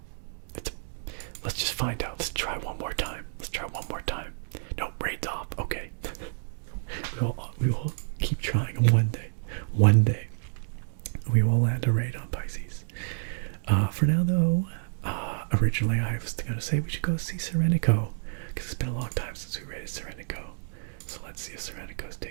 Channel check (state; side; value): silent; left; digital silence